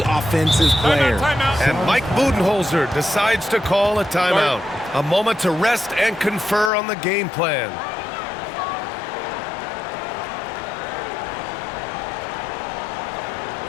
offensive player. Timeout. And Mike Budenholzer decides to call a timeout. A moment to rest and confer on the game plan.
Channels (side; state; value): right; drops out; at 6.7 s